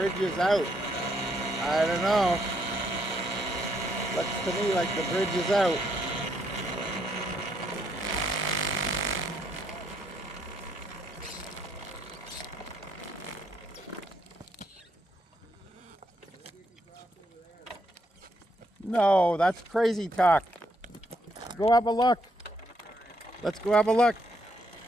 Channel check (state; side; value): normal; both; correlation 0.74